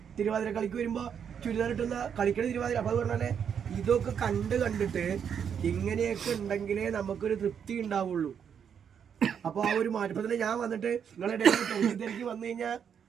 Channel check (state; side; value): quieter; left; 7.8 dB